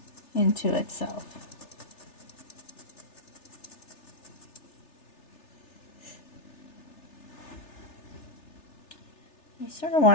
into itself. You sort of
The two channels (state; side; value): late; right; 3.3 ms